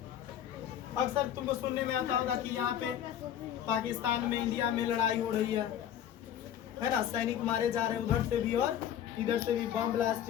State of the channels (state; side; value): quieter; right; 10.3 dB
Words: अक्सर तुमको सुनने में आता होगा कि यहाँ पे पाकिस्तान में, इंडिया में लड़ाई हो रही है ना, सैनिक मारे जा रहे हैं उधर से भी और इधर से भी, बम